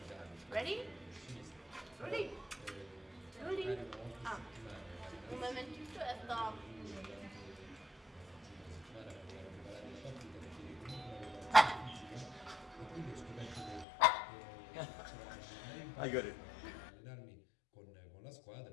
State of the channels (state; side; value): drops out; right; at 13.9 s